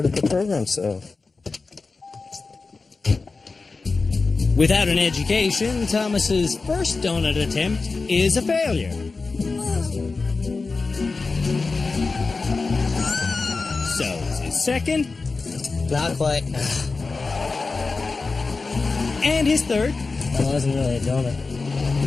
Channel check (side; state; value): right; quieter; 4.1 dB